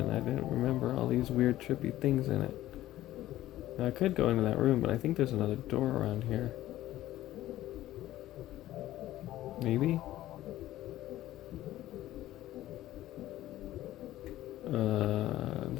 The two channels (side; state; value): right; quieter; 14.7 dB